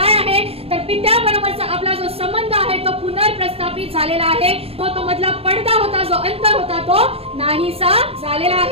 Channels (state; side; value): late; left; 0.28 ms